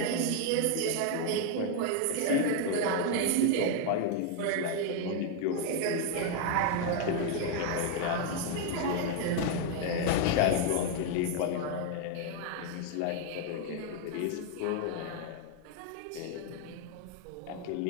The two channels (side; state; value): both; different; correlation 0.00